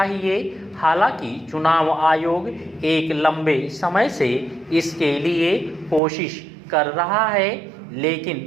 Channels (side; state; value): left; drops out; at 6.0 s